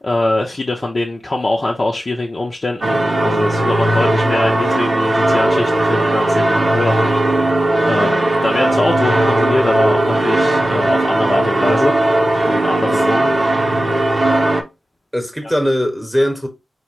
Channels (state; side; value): normal; both; correlation 0.94